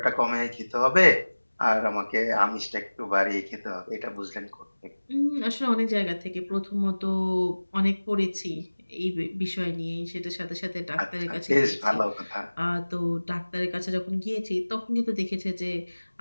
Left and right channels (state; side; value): inverted; both; correlation -1.00